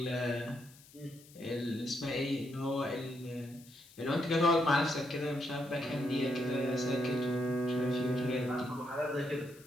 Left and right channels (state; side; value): noise; left; hiss, 23 dB below the sound